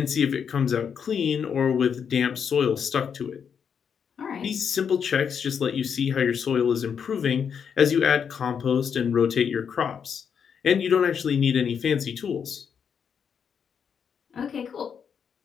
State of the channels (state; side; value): quieter; right; 7.2 dB